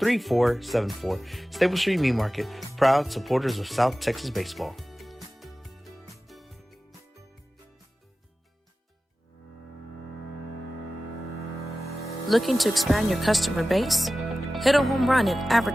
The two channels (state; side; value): normal; both; correlation 0.95